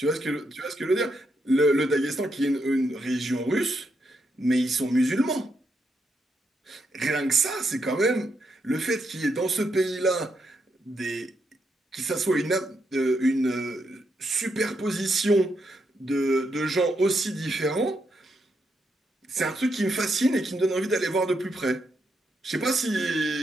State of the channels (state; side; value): normal; both; correlation 0.80